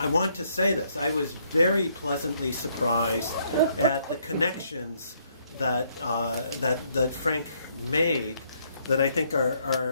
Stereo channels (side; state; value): both; inverted; correlation -0.70